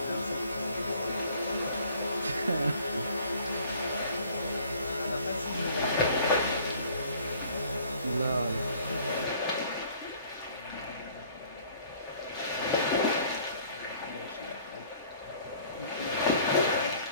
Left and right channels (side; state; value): both; inverted; correlation -0.54